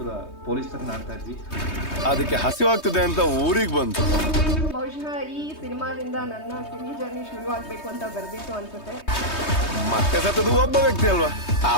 ಪೊಲೀಸ್ ತರ ಆಡ್ತಾ ಇದ್ವಿ. ಅದಕ್ಕೆ ಹಸಿವಾಗ್ತದೆ ಅಂತ ಊರಿಗೆ ಬಂತು. ಬಹುಶಃ ಈ ಸಿನಿಮಾದಿಂದ ನನ್ನ ಸಿನಿ ಜರ್ನಿ ಶುರು ಆಗ್ಬೇಕು ಅಂತ ಬರ್ದಿತ್ತು ಅನ್ಸುತ್ತೆ. ಮತ್ತೆ ಸತ್ತದು ಒಬ್ಬ ವ್ಯಕ್ತಿ ಅಲ್ವಾ,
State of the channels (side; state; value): right; late; 3.2 ms